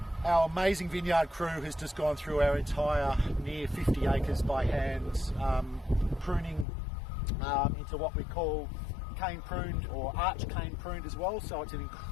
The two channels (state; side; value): drops out; right; at 6.7 s